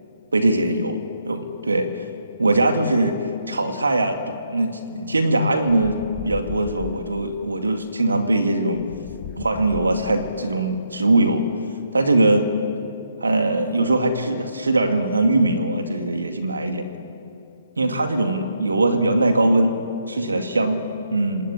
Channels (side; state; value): both; inverted; correlation -0.78